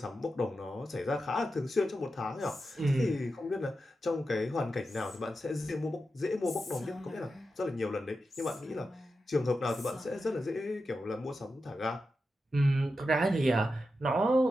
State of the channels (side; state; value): both; normal; correlation 0.89